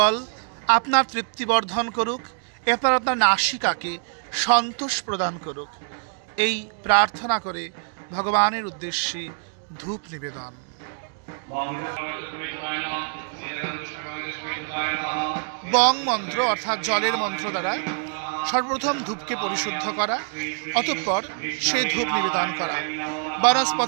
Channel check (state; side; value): silent; left; 62 dB below the other